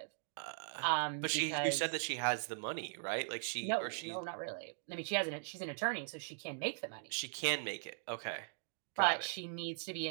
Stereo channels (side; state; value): left; silent; digital silence